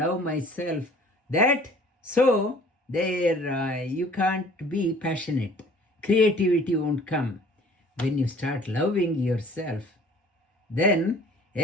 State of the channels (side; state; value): both; normal; correlation 0.52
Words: myself. That so there you can't be passionate. Creativity won't come. When you start loving yourself, then